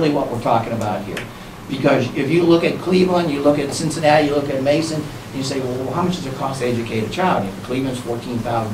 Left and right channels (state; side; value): identical; both; correlation 1.00